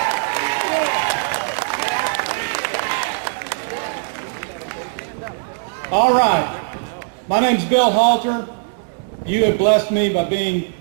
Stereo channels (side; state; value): left; silent; 66 dB below the other